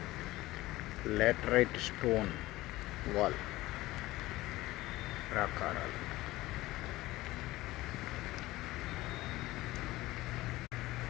లాటరైట్ స్టోన్ వాల్ ప్రాకారాలు.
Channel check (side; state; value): right; quieter; 18.0 dB